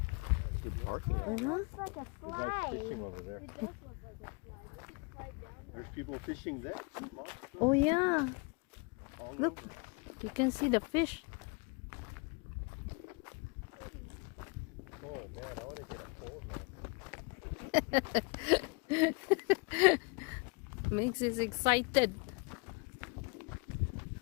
Good parking. Mhm. Looks like a The guy's slide. fishing over there. It does look like a slide. We could slide down there. There's people fishing there. Oh, yeah. All Look. over. You can see the fish. Oh man, I want to get a pole now. Makes us excited.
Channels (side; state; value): right; quieter; 32.2 dB